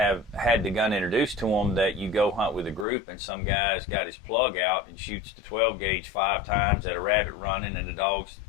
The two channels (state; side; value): drops out; right; at 2.9 s